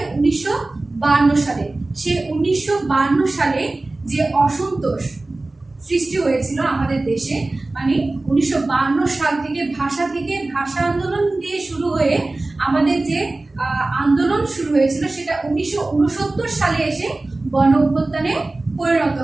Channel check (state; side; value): quieter; left; 3.0 dB